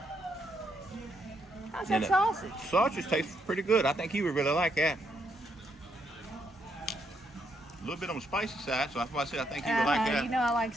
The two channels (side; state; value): both; normal; correlation 0.76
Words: How's And that sausage? Sausage tastes pretty good. I think he would really like that. A little bit on the spicy side, so that's why I said I think he would like that. You know I like